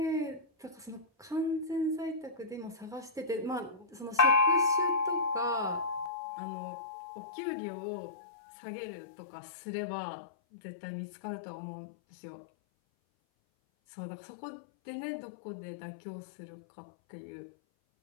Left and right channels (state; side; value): drops out; right; at 6.1 s